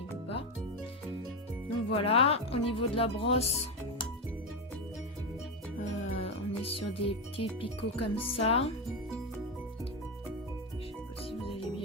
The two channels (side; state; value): both; normal; correlation 0.11